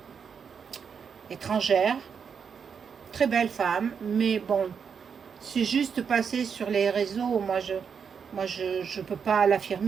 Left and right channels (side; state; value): left; quieter; 6.6 dB